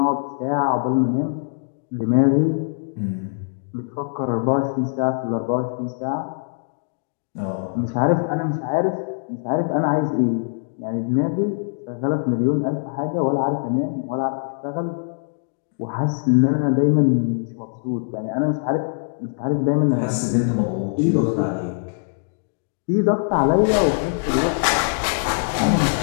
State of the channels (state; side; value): silent; right; digital silence